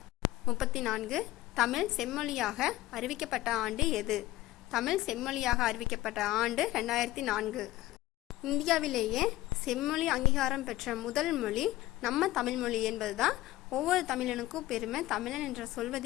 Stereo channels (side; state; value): right; quieter; 16.6 dB